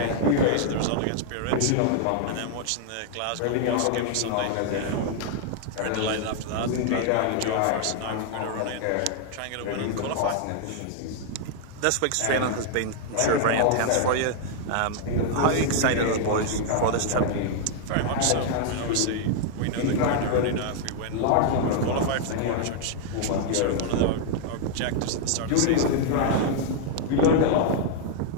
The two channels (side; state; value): both; different; correlation 0.00